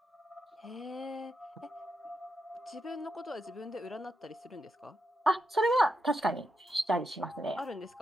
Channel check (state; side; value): normal; both; correlation 0.85